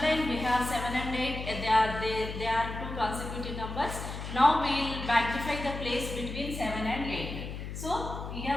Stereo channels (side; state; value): left; noise; hum, 7 dB below the sound